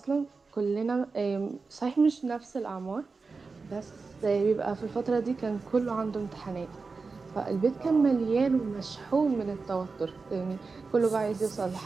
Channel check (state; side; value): quieter; left; 4.3 dB